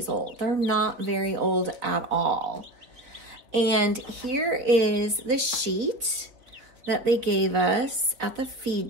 old. They're not very old at all. And here is the sheet that they gave us at the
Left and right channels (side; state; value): left; late; 4.0 ms